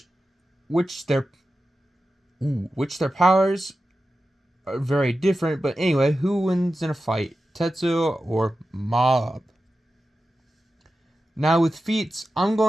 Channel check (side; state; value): both; normal; correlation 0.93